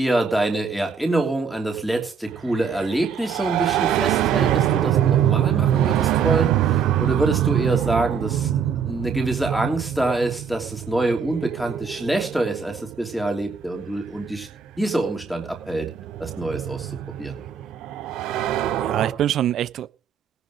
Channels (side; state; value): left; quieter; 5.7 dB